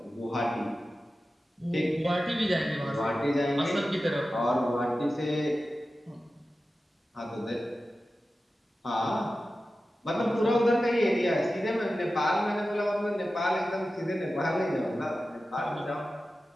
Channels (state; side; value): normal; both; correlation 0.94